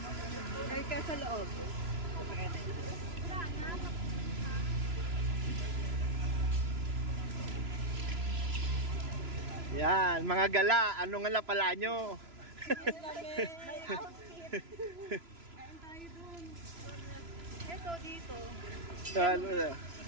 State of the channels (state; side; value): late; left; 3.0 ms